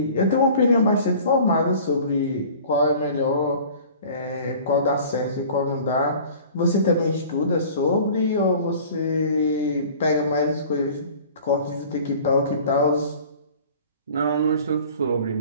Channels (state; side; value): inverted; both; correlation -0.45